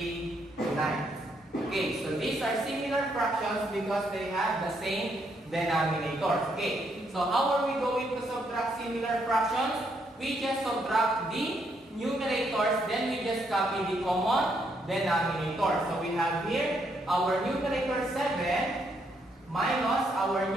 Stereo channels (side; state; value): both; normal; correlation 0.75